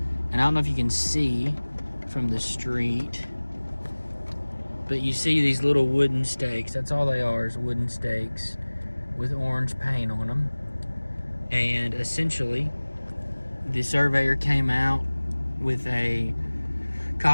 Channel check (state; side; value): inverted; both; correlation -1.00